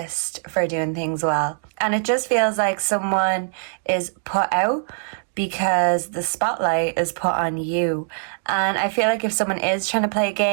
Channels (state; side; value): silent; left; digital silence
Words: for doing things well. And it just feels like someone is put out because the spotlight is put on you. And I feel like if someone is trying to play